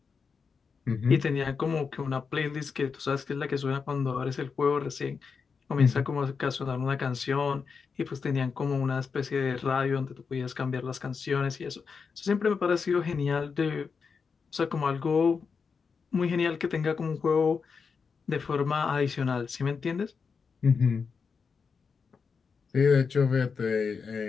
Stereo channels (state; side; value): quieter; right; 5.5 dB